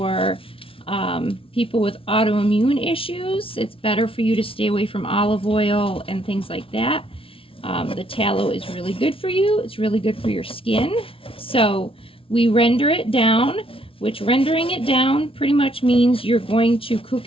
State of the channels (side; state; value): right; late; 0.26 ms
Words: people with autoimmune issues. It's better for you to stay away from olive oil and things like that. The tallow is really good for you. It's really good for your skin. So we render it down, which rendering it down pretty much means you're going to cook